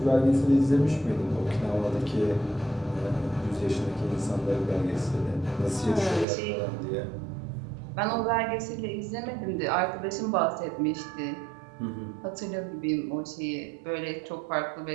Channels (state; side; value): drops out; left; at 6.2 s